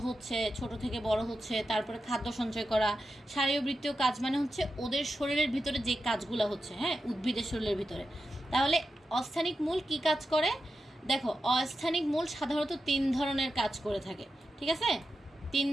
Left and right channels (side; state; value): both; normal; correlation 0.90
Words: হচ্ছে, ছোট থেকে বড় হচ্ছে, তারপরে খাদ্য সঞ্চয় করা। শারীরবৃত্তীয় কাজ মানে হচ্ছে ওদের শরীরের ভিতরে যে কাজগুলা হচ্ছে, হ্যাঁ, উদ্ভিদের শরীরের ভিতরে। তাহলে অস্থানিক মূল কি কাজ করে, দেখো অস্থানিক মূল সাধারণত 3 ধরনের কাজ করে থাকে, ঠিক আছে, 3